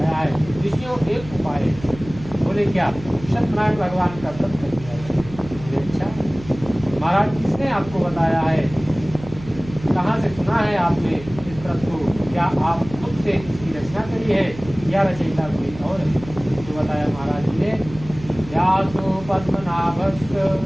है ऋषियों एक उपाय है। बोले क्या? सत्यनारायण भगवान का व्रत कर दिया है। बोले अच्छा महाराज किसने आपको बताया है, कहाँ से सुना है आपने इस व्रत को? क्या आप खुद से इसकी रचना करी है या रचयिता कोई और? तो बताया महाराज जी ने, व्यासो पद्मनाभस्य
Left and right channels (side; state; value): right; noise; hum, 15 dB below the sound